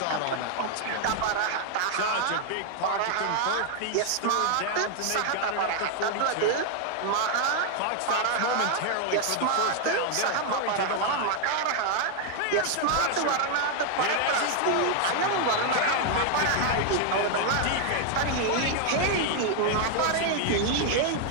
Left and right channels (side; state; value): both; different; correlation 0.00